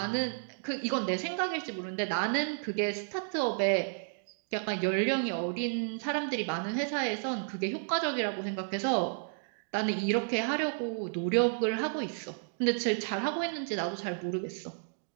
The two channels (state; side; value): silent; left; digital silence